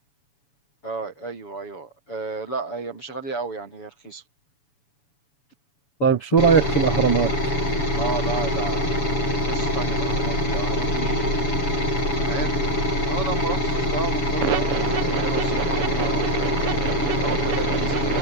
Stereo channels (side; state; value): right; late; 7.1 ms